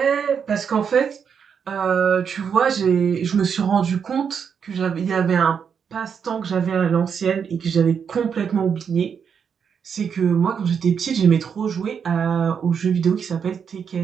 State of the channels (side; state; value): left; quieter; 6.9 dB